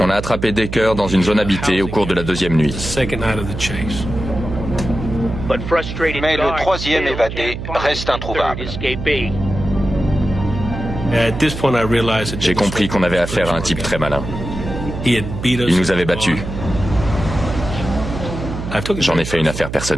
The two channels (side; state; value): right; noise; hum, 7 dB below the sound